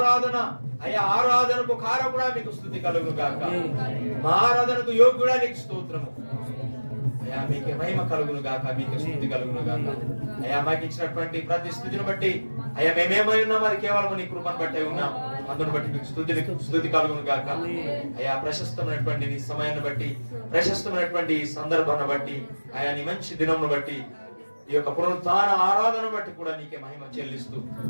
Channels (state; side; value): inverted; both; correlation -1.00